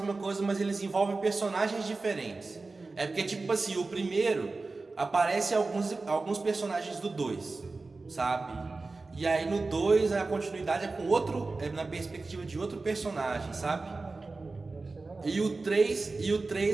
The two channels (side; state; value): left; quieter; 3.6 dB